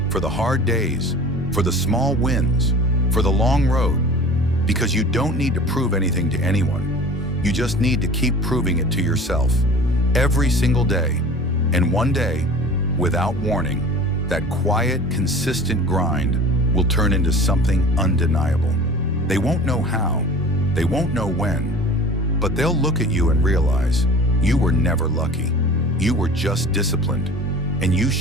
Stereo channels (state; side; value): normal; both; correlation 0.41